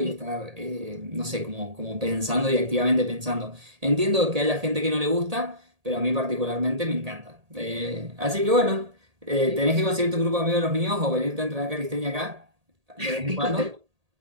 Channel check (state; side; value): late; left; 1.8 ms